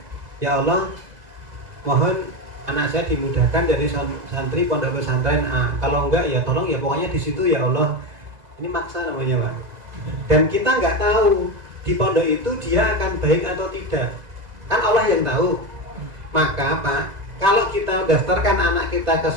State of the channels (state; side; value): late; left; 2.0 ms